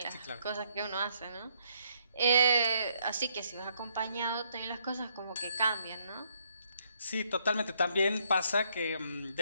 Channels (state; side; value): inverted; both; correlation -0.71